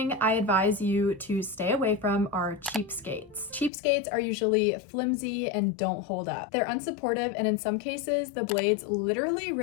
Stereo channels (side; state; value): right; drops out; at 3.7 s